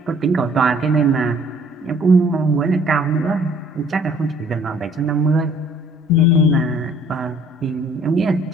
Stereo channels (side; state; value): both; normal; correlation 0.58